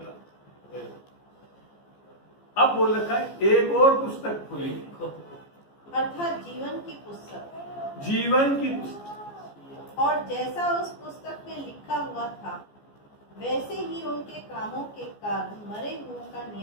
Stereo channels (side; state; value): right; late; 14 ms